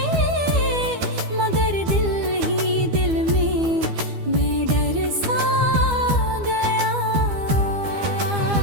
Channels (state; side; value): late; left; 12 ms